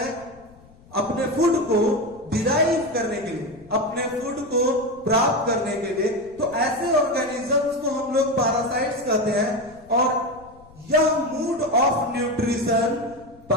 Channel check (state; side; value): noise; left; rumble, 25 dB below the sound